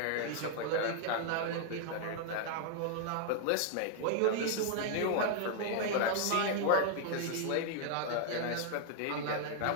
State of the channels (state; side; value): different; both; correlation 0.00